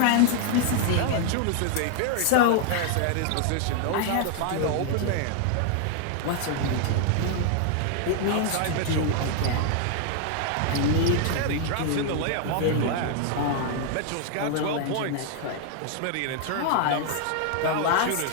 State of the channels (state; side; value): different; both; correlation 0.00